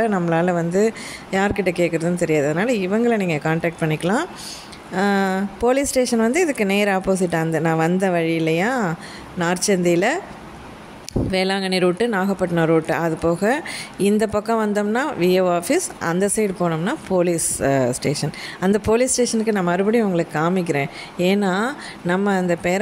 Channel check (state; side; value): identical; both; correlation 1.00